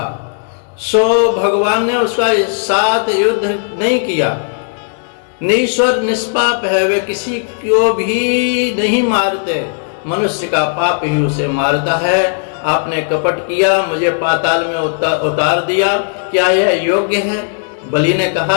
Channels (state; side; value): silent; right; digital silence